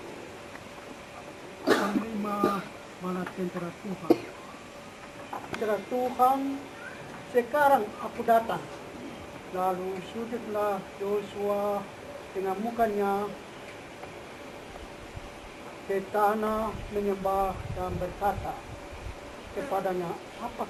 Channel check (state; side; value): identical; both; correlation 1.00